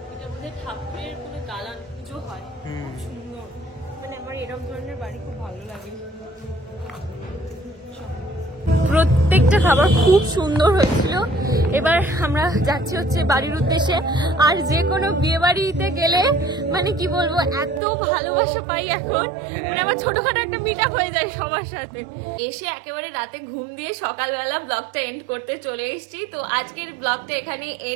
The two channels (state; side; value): drops out; left; at 17.8 s